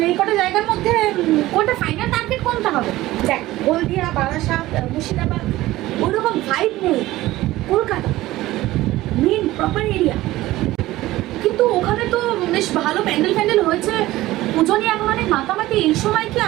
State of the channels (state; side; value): quieter; left; 16.9 dB